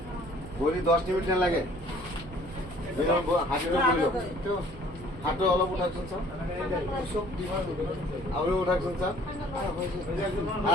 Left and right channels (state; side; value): noise; right; rumble, 15 dB below the sound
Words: ভৰি 10 মিনিট নালাগে হাতটো বহি লওক হাতটো অলপ উঠাকচোন ছাৰ আপুনি উঠাকচোন ছাৰ